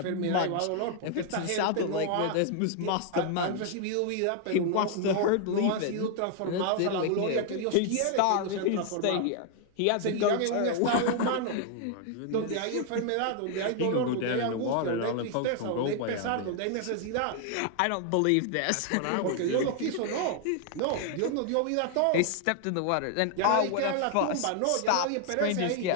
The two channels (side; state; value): both; different; correlation 0.00